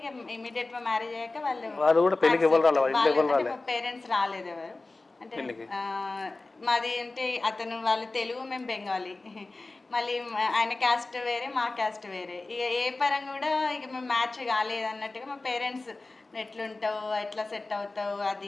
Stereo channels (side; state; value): right; quieter; 3.3 dB